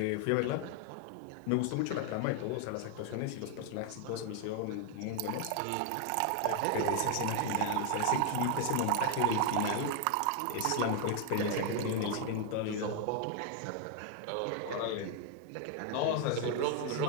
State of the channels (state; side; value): different; both; correlation 0.00